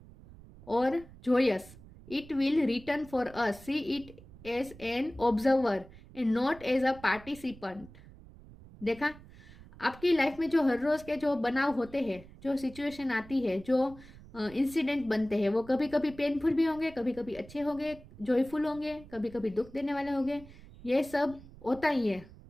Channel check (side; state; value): right; noise; rumble, 20 dB below the sound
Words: or joyous, it will return for us. See it as an observer and not as a participant. देखा, आपकी लाइफ में जो हर रोज के जो बनाव होते हैं, जो सिचुएशन आती है, जो इंसिडेंट बनते हैं, वो कभी कभी पेनफुल भी होंगे, कभी कभी अच्छे होंगे, जॉयफुल होंगे, कभी कभी दुख देने वाले होंगे। ये सब होता ही है,